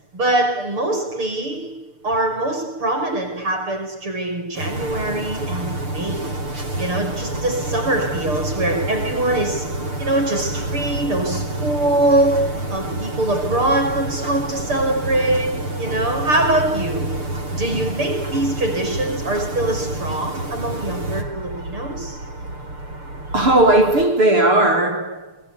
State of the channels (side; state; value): left; late; 6.7 ms